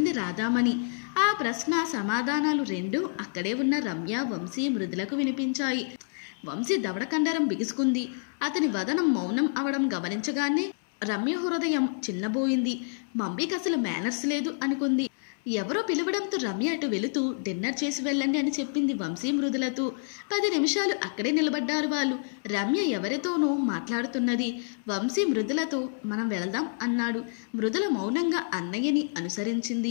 రాధామణి. ఆ ప్రశ్న సమాధానాలు రెండూ అక్కడే ఉన్న రమ్య, వంశీ, మృదులకు వినిపించాయి. వంశీ దవడకండరం బిగుసుకుంది. అతని వదనం మౌనం అవడం గమనించగానే రమ్య హృదయం చిన్నబోయింది. మమ్మీకి అసలు మేనర్స్ లేదు అనుకుంది. ఎవరో పిలవడంతో రమ్య అటు వెళుతూ, డిన్నర్ చేసి వెళ్ళండి అని చెప్పింది వంశీ మృదులతో. 10 నిమిషాలు అక్కడే నిలబడ్డారు వాళ్ళు. రమ్య ఎవరితోనో మాట్లాడుతున్నది. వంశీ మృదులతో, మనం వెళదాం అన్నాడు. మృదుల మౌనంగా అన్నయ్యని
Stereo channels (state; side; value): silent; right; 59 dB below the other